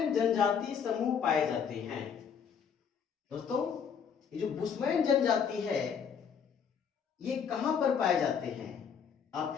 जनजाति समूह पाए जाते हैं। दोस्तों, ये जो बुशमैन जनजाति है, ये कहां पर पाए जाते हैं?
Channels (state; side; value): quieter; right; 7.1 dB